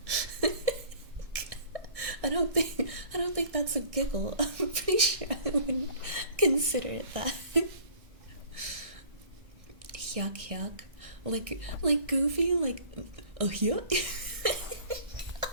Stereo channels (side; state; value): left; late; 1.6 ms